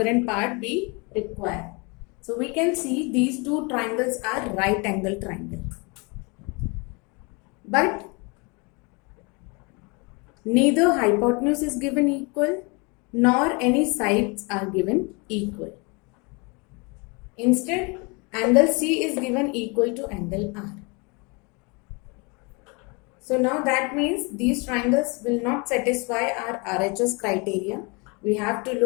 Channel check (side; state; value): right; quieter; 30.1 dB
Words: part we require. So we can see these two triangles are right angle triangle, but neither hypotenuse is given equal nor any sides are given equal. Instead, angle C is given equal to angle R. So now that means these triangles will not satisfy our RHS criteria. We have to